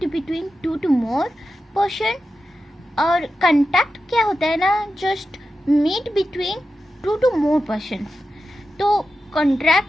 between two to more person. और कॉन्ट्रैक्ट क्या होता है ना, just meet between two to more persons. तो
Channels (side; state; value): both; normal; correlation 0.92